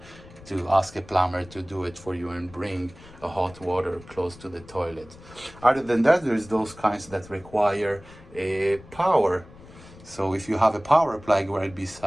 ask a plumber to do it for you and bring a hot water close to the toilet. Other than that, there's those kinds that require a power. So if you have a power plug right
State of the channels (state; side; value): noise; left; rumble, 20 dB below the sound